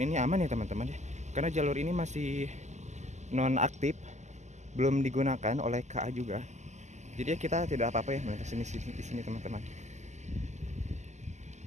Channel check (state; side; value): late; left; 0.34 ms